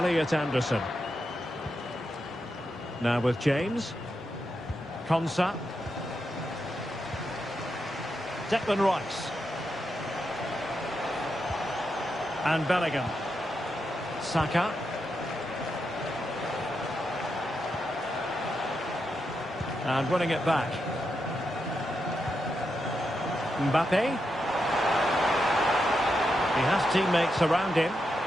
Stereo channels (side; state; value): both; normal; correlation 0.85